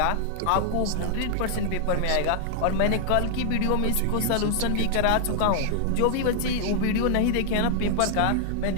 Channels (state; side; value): different; both; correlation 0.00